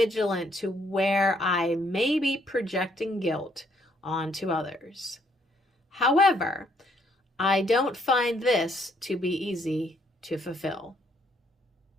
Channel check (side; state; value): both; normal; correlation 0.69